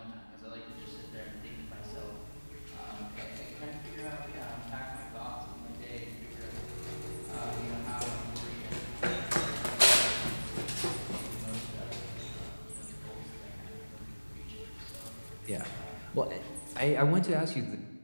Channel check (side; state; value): both; inverted; correlation -1.00